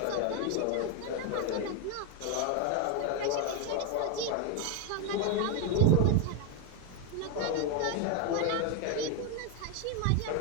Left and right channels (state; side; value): different; both; correlation 0.01